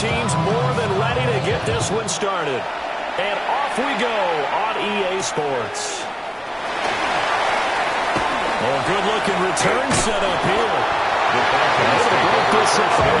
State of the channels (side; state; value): both; identical; correlation 1.00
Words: more than ready to get this one started. And off we go on EA Sports. Oh, good-looking return set up here. Able to break this all